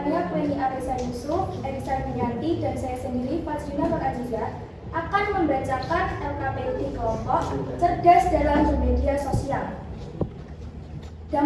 Pleni Arisa Yusuf, Erisa Yanti, dan saya sendiri Fazlina Nur Aziza akan membacakan LKPD kelompok cerdas dalam bermedia sosial.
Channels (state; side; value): identical; both; correlation 1.00